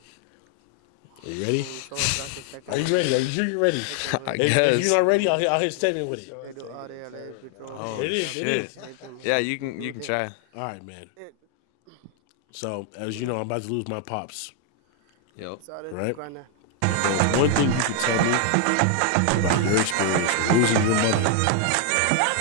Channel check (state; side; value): different; both; correlation 0.00